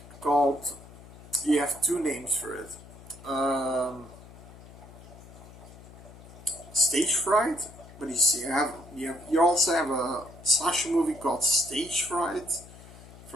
called. You have two names for it. Stage fright, but you see, you also have a slasher movie called Stage Fright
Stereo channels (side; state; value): left; noise; hum, 19 dB below the sound